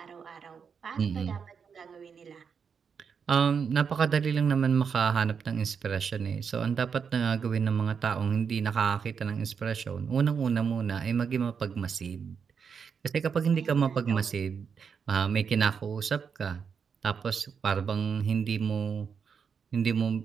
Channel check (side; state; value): left; quieter; 6.4 dB